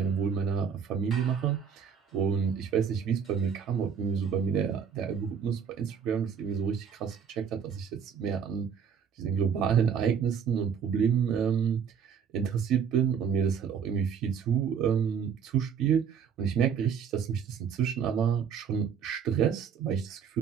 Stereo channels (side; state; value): left; quieter; 7.2 dB